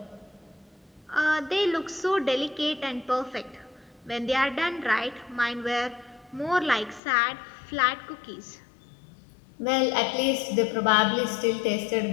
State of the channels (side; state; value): right; drops out; at 7.0 s